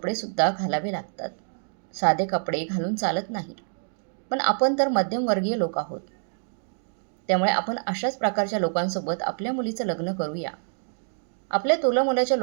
घालावे लागतात. साधे कपडे घालून चालत नाही. पण आपण तर मध्यमवर्गीय लोक आहोत. त्यामुळे आपण अशाच प्रकारच्या लोकांसोबत आपल्या मुलीचं लग्न करूया. आपल्या तोलामोलाच्या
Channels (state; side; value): silent; left; digital silence